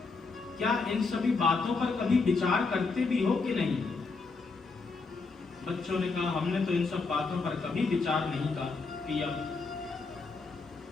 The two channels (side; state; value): right; quieter; 4.2 dB